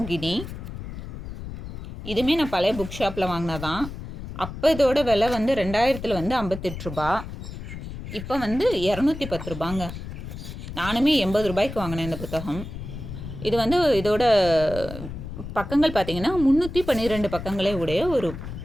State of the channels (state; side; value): noise; left; rumble, 9 dB below the sound